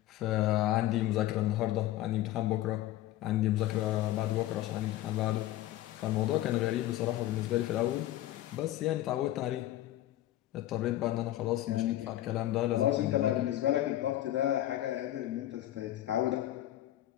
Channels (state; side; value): quieter; right; 14.2 dB